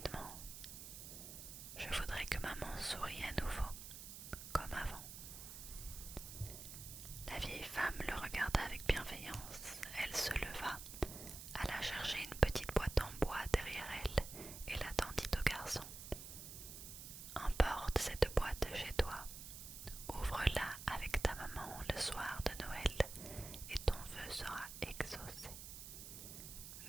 Je voudrais que maman sourie à nouveau, comme avant. La vieille femme le regarda avec bienveillance. Elle se leva, alla chercher une petite boîte en bois derrière elle et la tendit au garçon. Emporte cette boîte chez toi. Ouvre-la avec ta maman le soir de Noël et ton vœu sera exaucé.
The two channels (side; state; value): right; noise; hiss, 10 dB below the sound